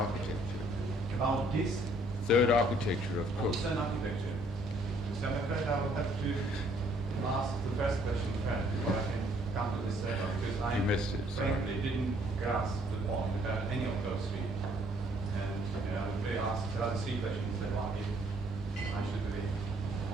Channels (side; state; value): both; normal; correlation 0.64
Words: About this Third architecture of course. Western architecture. So I'm afraid I will have to ask the first question first before I can come to this second, because I You missed it, sorry. frankly didn't grasp the point about any of those three. And I would be asked the other three questions that one I should really